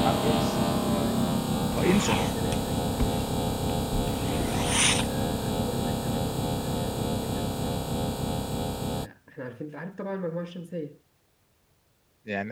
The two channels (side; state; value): both; identical; correlation 1.00